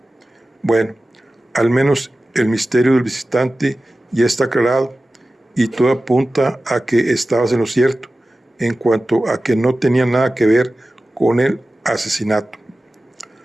Bueno, al menos el misterio del visitante ya está aclarado, y todo apunta a que estabas en lo cierto en cuanto a que no tenía nada que ver con el asesinato.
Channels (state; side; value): normal; both; correlation 0.95